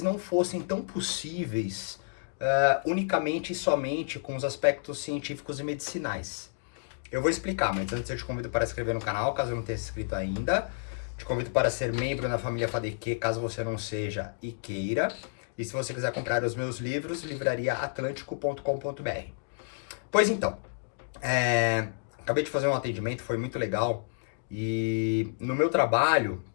não fossem tão possíveis unicamente e somente com os aspectos científicos e medicinais. Eu vou explicar, mas antes eu te convido para se inscrever no canal, caso não tenha se inscrito ainda. Te convido para ser membro na família FADQ, caso você não seja e queira. E se você quiser comprar os meus livros, livrariaatlântico.com.br. Pois então, acabei de fazer um atendimento, foi muito legal. E no meu trabalho,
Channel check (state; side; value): silent; right; digital silence